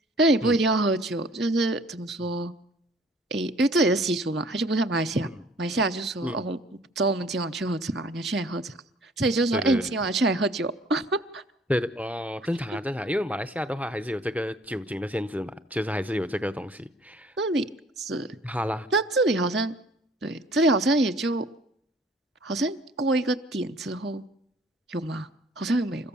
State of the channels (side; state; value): both; normal; correlation 0.55